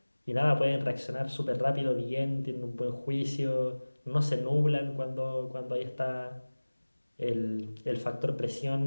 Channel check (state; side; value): inverted; both; correlation -1.00